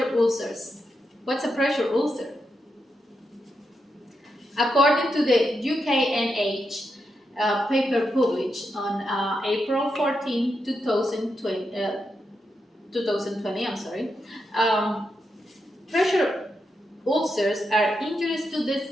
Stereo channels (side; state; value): both; normal; correlation 0.85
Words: ulcers. What's a pressure ulcer? According to the UKNH paper published on April 14, 2020, pressure ulcers are injury